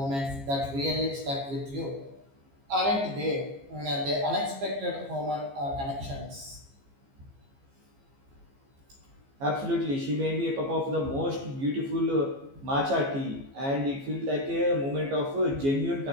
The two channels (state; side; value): late; left; 15 ms